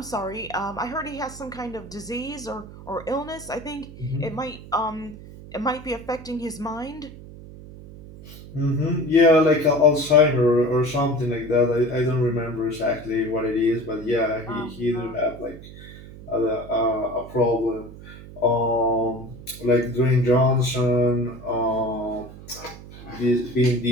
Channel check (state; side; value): noise; right; hum, 16 dB below the sound